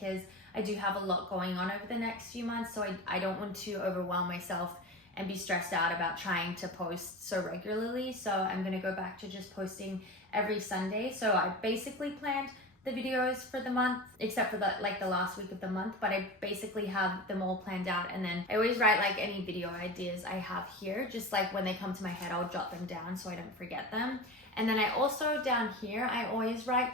I do have a lot going on over the next few months. So I don't want to overwhelm myself and be stressed out about trying to post so regularly. So I'm gonna go back to just posting every Sunday. So I basically planned the videos for the month, except for the last week of the month, but I basically have them all planned out. And then I always write like any video ideas I have here, just like when they come to my head, I'll jot them down so I don't forget them. And then I also down here, I always write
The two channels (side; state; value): both; normal; correlation 0.28